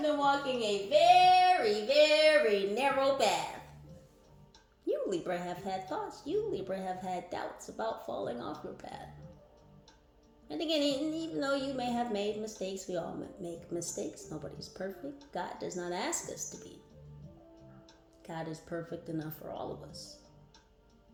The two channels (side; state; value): both; identical; correlation 1.00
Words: been walking a very, very narrow path. You, Libra, have had thoughts. You, Libra, have had doubts about falling off your path. And again, even though you may have made mistakes, we all make mistakes. Nobody's perfect. God does not ask us to be. God is perfect enough for all of us.